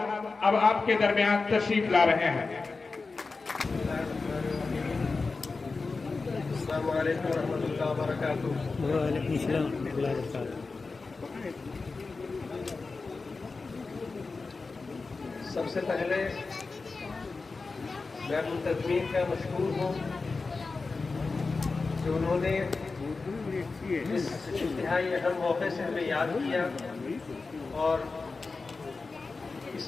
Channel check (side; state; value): right; quieter; 4.1 dB